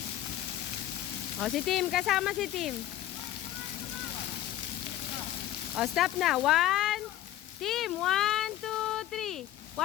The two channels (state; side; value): quieter; right; 13.2 dB